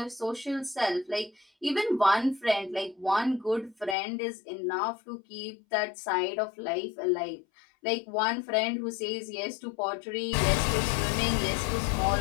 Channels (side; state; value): right; drops out; at 4.0 s